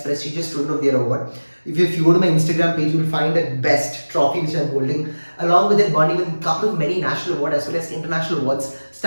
prestigious Student of the Year award. If you go to my Instagram page, you will find that best trophy which I'm holding. Along with that, won even a couple of many national awards as well as international awards,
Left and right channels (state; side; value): inverted; both; correlation -1.00